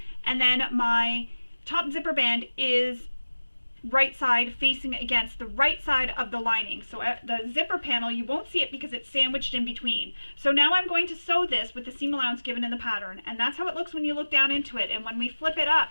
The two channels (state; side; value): inverted; both; correlation -1.00